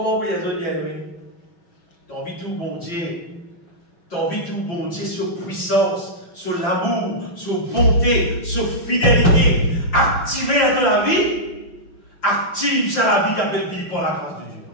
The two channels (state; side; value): late; right; 5.7 ms